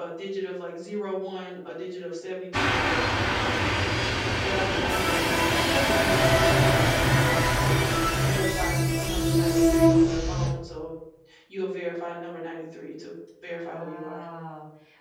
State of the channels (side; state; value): both; identical; correlation 1.00